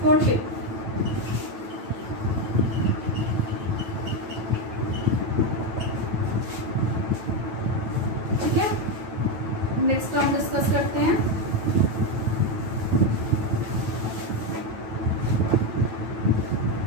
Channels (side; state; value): left; late; 9.1 ms